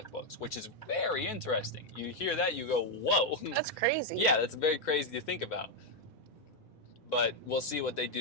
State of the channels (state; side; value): normal; both; correlation 0.02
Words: books, which is very interesting. You hear that, you go, whoa. That's crazy. Yeah, that's very crazy to think about. But we'll see what they